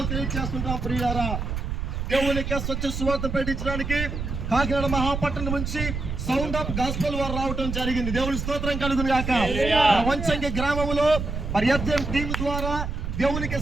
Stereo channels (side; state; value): right; noise; rumble, 4 dB below the sound